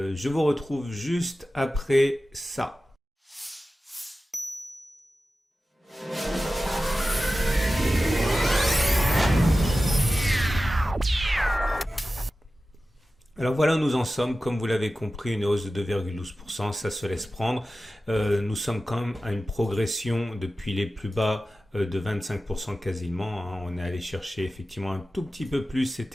vous retrouve juste après ça. Alors voilà où nous en sommes, comme vous l'avez compris, une hausse de 2,12%, ça se laisse prendre. Nous sommes quand même à une progression depuis les plus bas de 25% quasiment. On est allé chercher effectivement un tout petit peu plus,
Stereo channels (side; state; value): both; normal; correlation 0.95